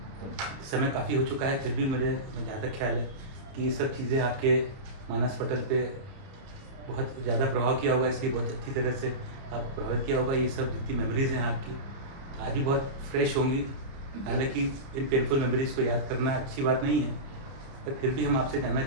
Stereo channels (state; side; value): late; left; 30 ms